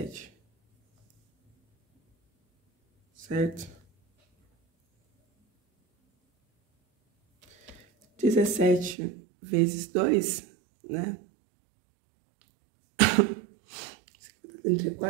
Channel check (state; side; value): drops out; left; at 9.0 s